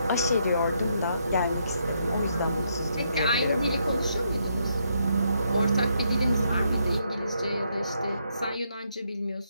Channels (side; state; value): both; inverted; correlation -0.76